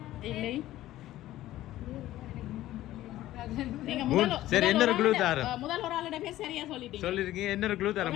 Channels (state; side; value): quieter; right; 14.8 dB